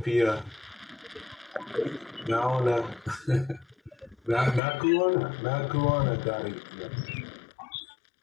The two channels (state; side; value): drops out; right; at 4.6 s